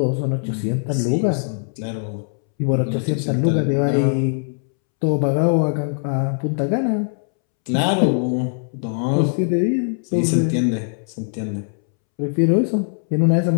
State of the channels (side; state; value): right; silent; 65 dB below the other